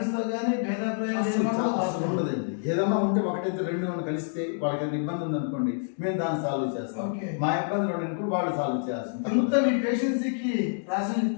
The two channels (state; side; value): silent; right; digital silence